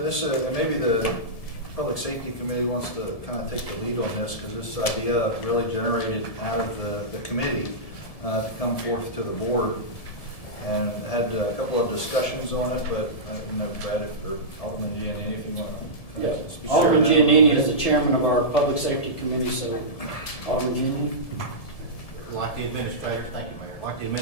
maybe the Public Safety Committee wants to kind of take the lead on this, because this idea really generated out of the committee to come forth to the board, and had a couple of discussions on it, but I don't know, Brad, or Alderman Giannini, if you want to speak. Alderman Giannini is the chairman of our Public Safety Committee, so Alderman Giannini. Like the administrator, thank you, Mayor. Like the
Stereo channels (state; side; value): late; right; 1.7 ms